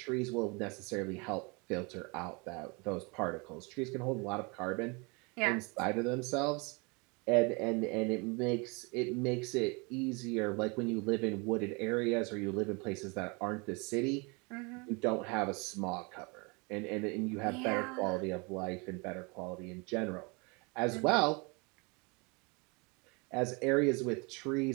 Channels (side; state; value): left; quieter; 29.8 dB